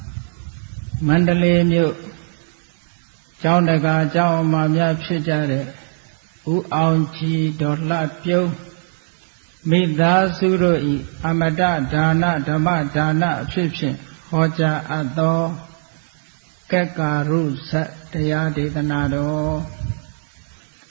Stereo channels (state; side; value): silent; left; digital silence